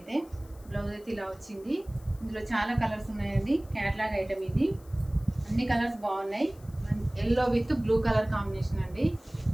బ్లౌజ్ అయితే ఇలా వచ్చింది. ఇందులో చాలా కలర్స్ ఉన్నాయండి. క్యాట్లాగ్ ఐటమ్ ఇది. అన్ని కలర్స్ బాగున్నాయి. Yellow with blue colour combination అండి.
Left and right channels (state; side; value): noise; left; hiss, 27 dB below the sound